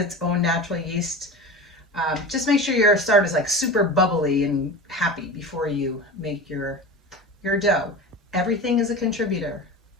own natural yeast, just make sure your starter is super bubbly and happy before you make your dough. Everything is a contributor.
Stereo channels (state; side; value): normal; both; correlation 0.31